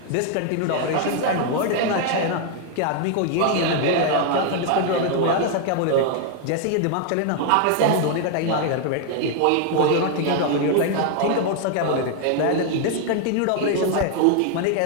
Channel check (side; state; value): both; different; correlation 0.00